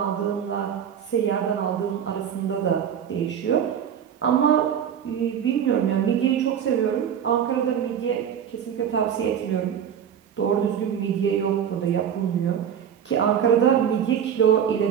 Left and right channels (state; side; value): quieter; left; 8.7 dB